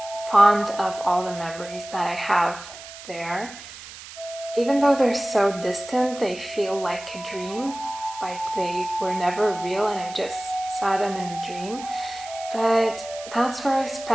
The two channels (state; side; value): noise; right; hiss, 15 dB below the sound